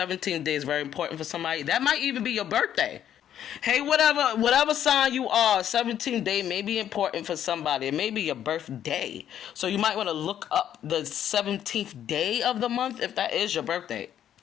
day is very important for somebody. That might even be your birthday. Hey, whatever sign you are, 17th day may be important for somebody. It may be your birthday. So you might want to look up the 17th day of the month if that is your birthday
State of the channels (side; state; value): right; quieter; 10.3 dB